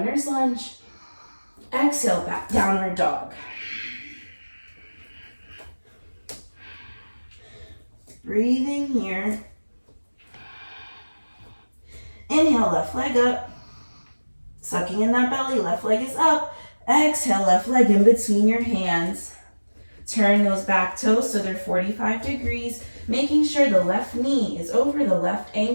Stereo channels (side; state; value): both; inverted; correlation -1.00